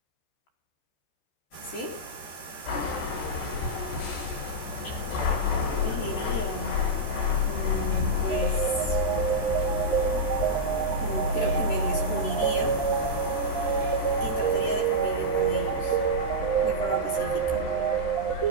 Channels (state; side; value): late; right; 13 ms